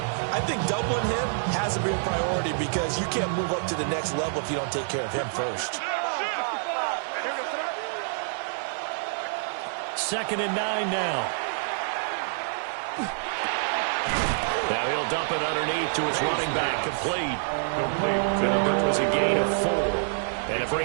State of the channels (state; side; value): silent; left; digital silence